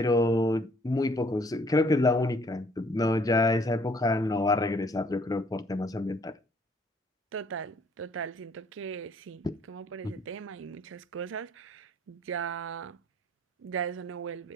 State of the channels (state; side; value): normal; both; correlation 0.61